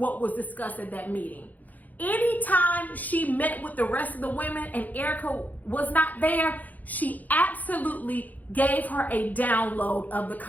was discussed at that meeting. Anytime she met with the rest of the women and Erica was not there, she absolutely gave her a download of the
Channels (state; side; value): late; right; 0.081 ms